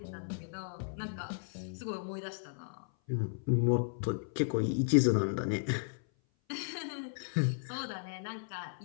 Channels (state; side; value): silent; right; 54 dB below the other